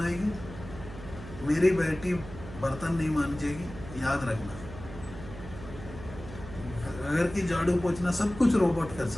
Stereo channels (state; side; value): noise; right; hum, 13 dB below the sound